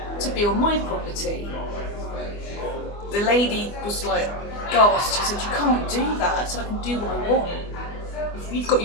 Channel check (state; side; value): late; right; 24 ms